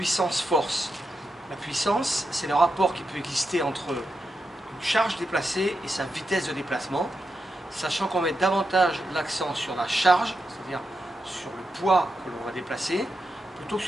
La puissance, c'est le rapport qui peut exister entre une charge déplacée et sa vitesse de déplacement, sachant qu'on met davantage l'accent sur la charge, c'est-à-dire sur le poids que l'on va déplacer, plutôt que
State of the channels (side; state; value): both; normal; correlation 0.87